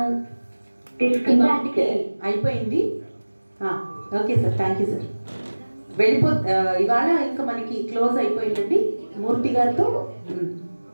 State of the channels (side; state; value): both; inverted; correlation -1.00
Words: అయిపోయింది. Okay sir, thank you sir. ఇవాళ ఇంకా మనకి క్లోజ్ అయిపోయిందండి మూర్తి గారితో.